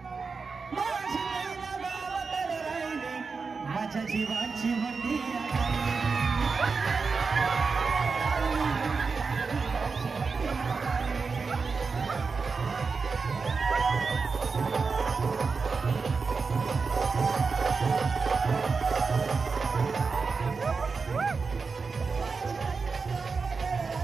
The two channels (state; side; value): quieter; left; 4.8 dB